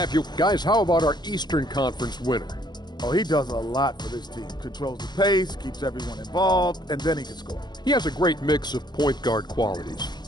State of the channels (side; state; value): right; late; 0.21 ms